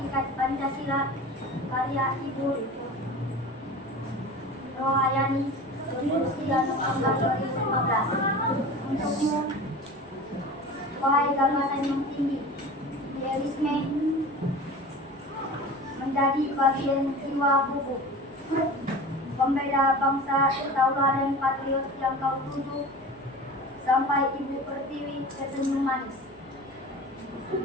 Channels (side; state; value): both; normal; correlation 0.36